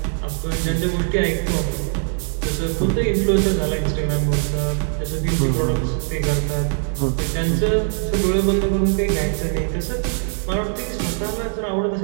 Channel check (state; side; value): silent; left; 64 dB below the other